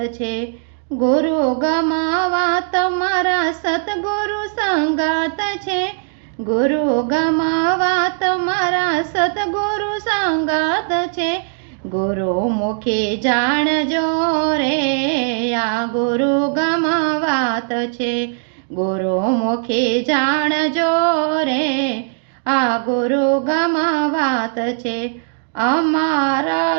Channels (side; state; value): left; silent; 60 dB below the other